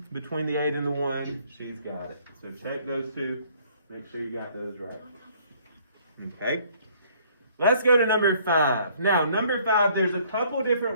Between the 8 and the 1, she's got it. So check those 2. Make sure you got those right. Okay. Let's go to number 5. Now, number 5, there's a couple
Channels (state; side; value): inverted; both; correlation -0.60